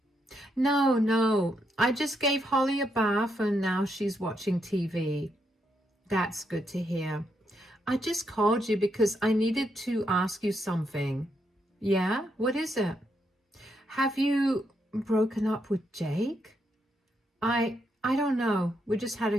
No, I just gave Holly a bath and now she's watching TV. That's good to hear. I just called you because I needed to ask you something. Yeah? What is it? Have you broken up with Jake? I don't know. We just had a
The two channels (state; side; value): normal; both; correlation 0.79